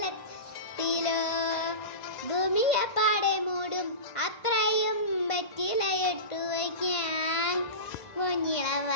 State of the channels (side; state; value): right; late; 1.5 ms